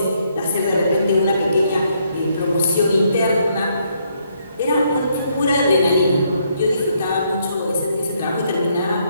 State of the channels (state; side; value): inverted; both; correlation -0.73